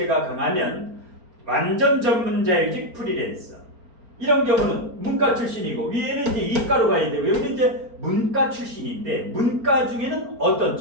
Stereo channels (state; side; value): late; left; 4.4 ms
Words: 강하면 완전 전문자일직 프리랜서. 이런 경우는 문과 출신이고 위에는 이제 이과로 가야 되고 여기는 이제 문과 출신인데 문과 중에는 어떤